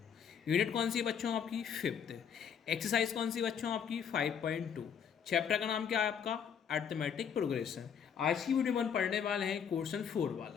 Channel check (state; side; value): quieter; right; 7.7 dB